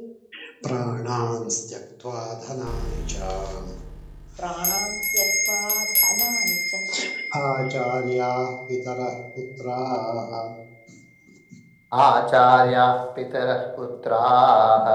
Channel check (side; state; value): both; identical; correlation 1.00